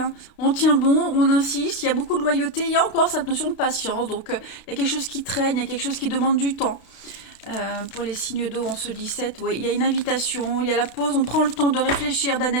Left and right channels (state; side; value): late; right; 32 ms